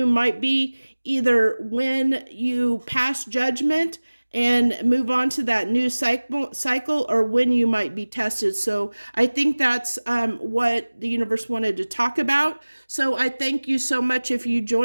might be either when you pass judgment and move on to that new cycle, or when you might be tested. So I think that's what the universe wanted to talk about. So I thank you so much if you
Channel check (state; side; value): inverted; both; correlation -1.00